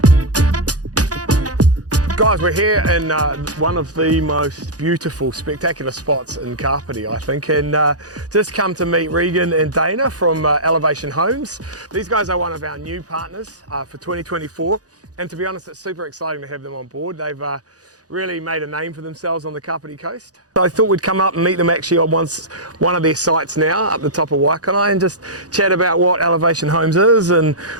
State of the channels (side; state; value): left; late; 0.67 ms